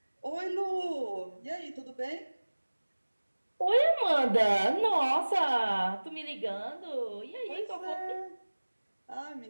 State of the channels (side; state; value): both; inverted; correlation -1.00